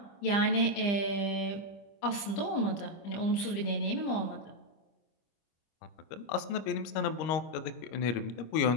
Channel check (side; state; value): right; late; 25 ms